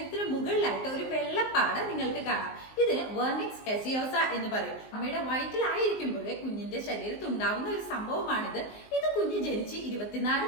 മുകളിലായിട്ട് ഒരു വെള്ളപ്പാട് നിങ്ങൾക്ക് കാണാം. ഇതിന് വെർണിക്സ് കാസിയോസ എന്ന് പറയും. അമ്മയുടെ വയറ്റിലായിരിക്കുമ്പോഴേ കുഞ്ഞിന്റെ ശരീരത്തിൽ ഉണ്ടാവുന്ന ഒരു സംഭവമാണിത്. ഇത് കുഞ്ഞ് ജനിച്ച്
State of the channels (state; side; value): late; right; 19 ms